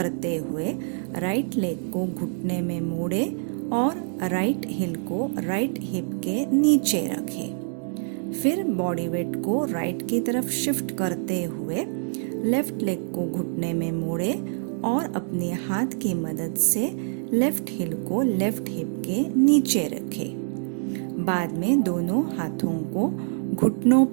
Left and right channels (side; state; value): left; silent; 61 dB below the other